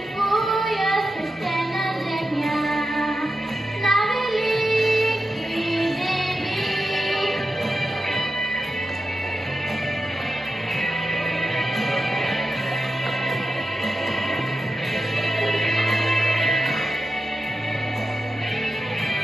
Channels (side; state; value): both; normal; correlation 0.90